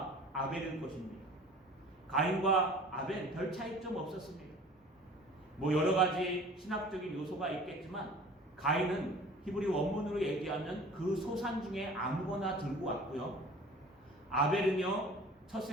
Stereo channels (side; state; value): both; normal; correlation 0.45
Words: 아벨일 것입니다. 가인과 아벨 별 차이점 없었습니다. 뭐 여러 가지 신학적인 요소가 있겠지만 가인은 히브리 원문으로 얘기하면 그 소산 중에 아무거나 들고 왔고요. 아벨은요, 첫